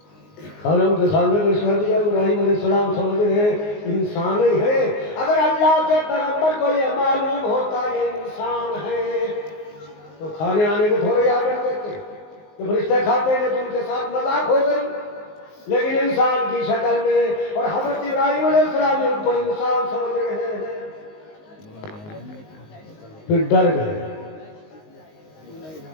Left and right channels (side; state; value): right; late; 19 ms